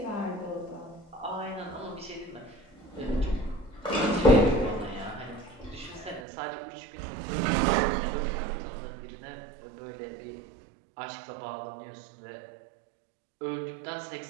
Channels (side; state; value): left; drops out; at 6.2 s